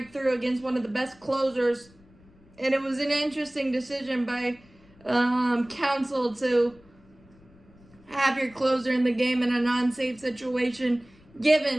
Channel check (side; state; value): left; noise; rumble, 27 dB below the sound